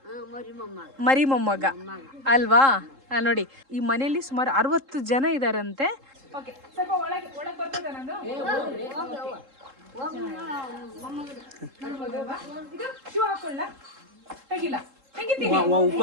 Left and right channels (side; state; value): left; late; 3.7 ms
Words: ಮೊಮ್ಮಗ ಅಲ್ವಾ? ನೋಡಿ, ಈ ಮನೆಯಲ್ಲಿ ಸುಮಾರು 60 ಜನ ಇದಾರಂತೆ.